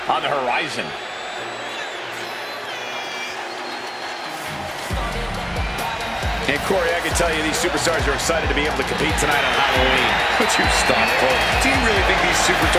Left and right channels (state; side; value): identical; both; correlation 1.00